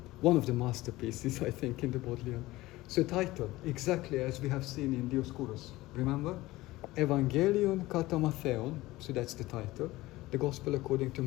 One of the masterpieces, I think, in the Bodleian. So title, exactly as we have seen in Dioscorus. Remember? Evangelion kata Mattheon, so that's the title. The Gospel according to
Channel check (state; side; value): quieter; right; 18.4 dB